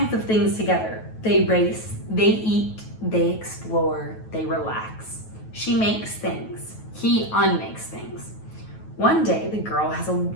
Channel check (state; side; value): late; right; 9.3 ms